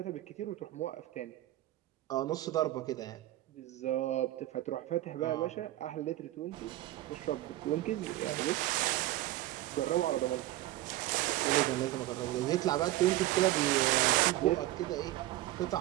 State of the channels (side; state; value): left; quieter; 15.8 dB